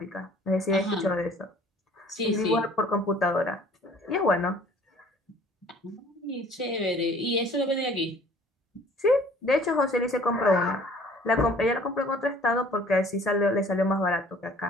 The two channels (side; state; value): both; normal; correlation 0.53